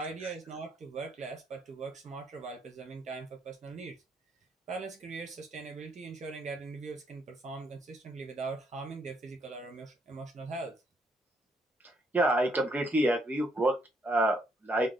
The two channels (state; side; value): normal; both; correlation 0.72